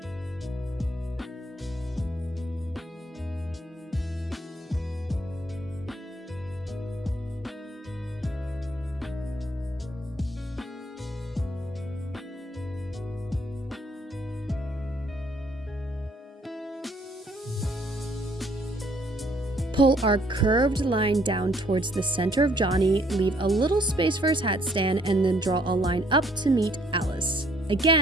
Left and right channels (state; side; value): normal; both; correlation 0.65